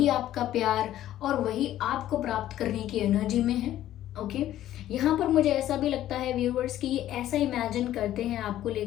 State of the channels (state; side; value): quieter; right; 12.9 dB